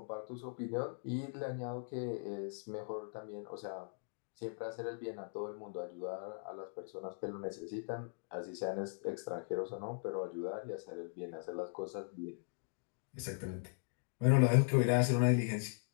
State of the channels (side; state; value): right; silent; digital silence